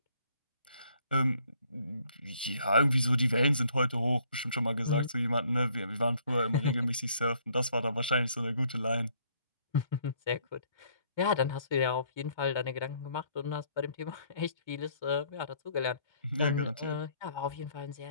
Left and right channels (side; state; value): both; inverted; correlation -0.64